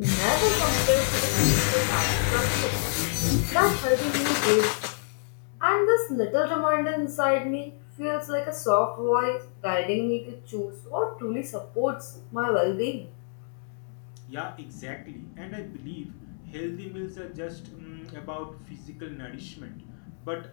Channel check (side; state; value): right; silent; digital silence